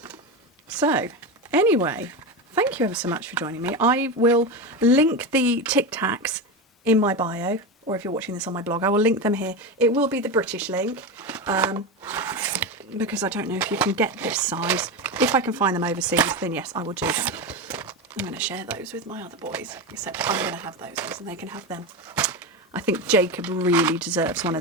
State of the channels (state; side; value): normal; both; correlation 0.18